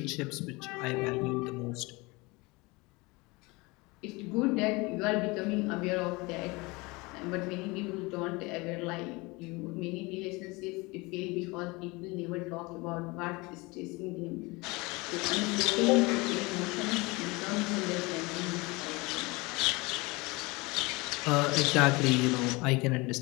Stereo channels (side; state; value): right; quieter; 24.7 dB